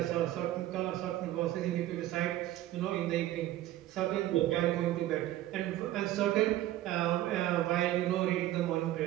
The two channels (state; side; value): quieter; left; 14.4 dB